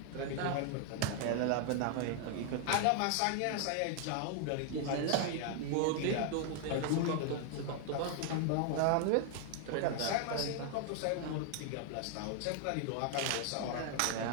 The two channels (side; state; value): both; different; correlation 0.00